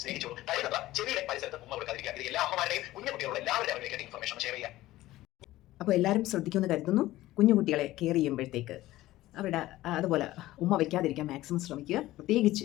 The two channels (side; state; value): right; quieter; 16.3 dB